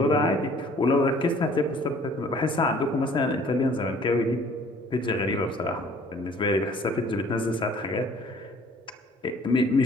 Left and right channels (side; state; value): both; normal; correlation 0.54